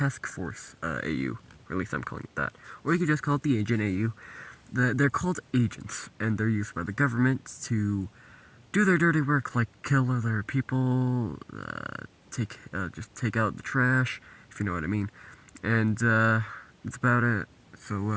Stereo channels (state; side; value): identical; both; correlation 1.00